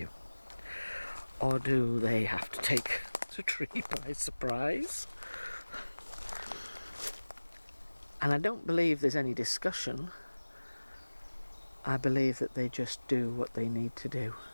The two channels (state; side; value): inverted; both; correlation -1.00